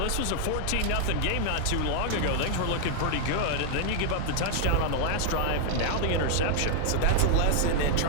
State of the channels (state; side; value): different; both; correlation -0.01